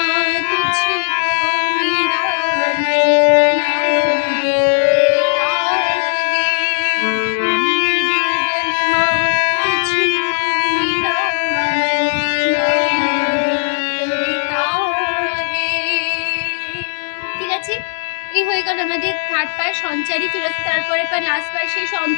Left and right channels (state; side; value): silent; right; digital silence